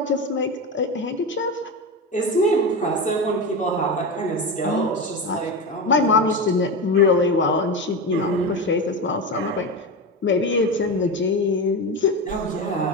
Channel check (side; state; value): both; normal; correlation 0.20